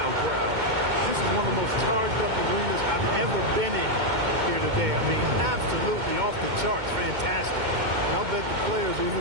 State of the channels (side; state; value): left; late; 2.2 ms